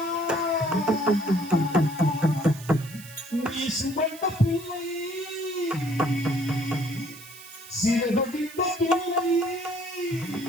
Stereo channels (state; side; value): noise; right; hiss, 17 dB below the sound